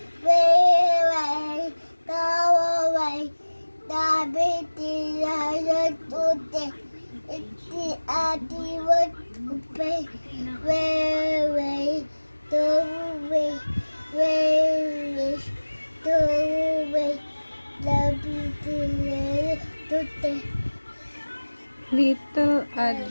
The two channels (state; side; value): inverted; both; correlation -1.00